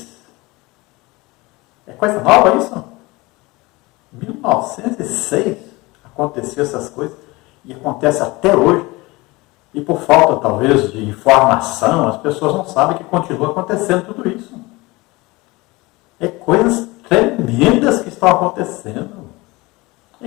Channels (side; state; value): right; quieter; 22.6 dB